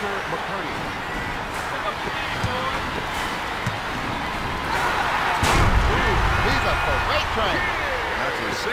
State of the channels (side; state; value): both; identical; correlation 1.00